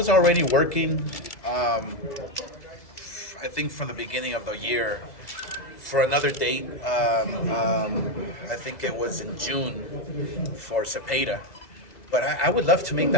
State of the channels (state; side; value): late; right; 2.0 ms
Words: already working, I think from the beginning of the year, for another date. I think it was in June for Zepeda. But I would love to make